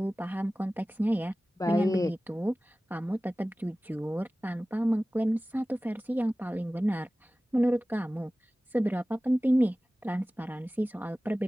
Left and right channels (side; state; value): both; normal; correlation 0.97